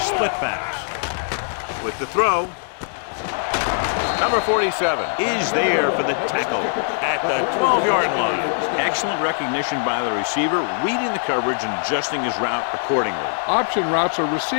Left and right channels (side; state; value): right; silent; digital silence